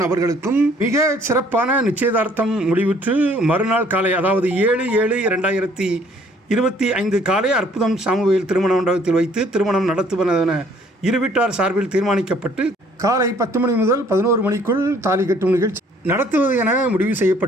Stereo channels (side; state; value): both; normal; correlation 0.60